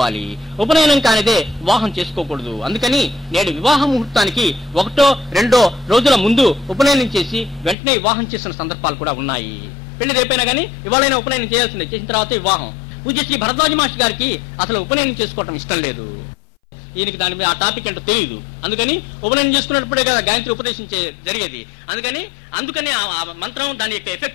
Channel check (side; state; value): right; drops out; at 7.8 s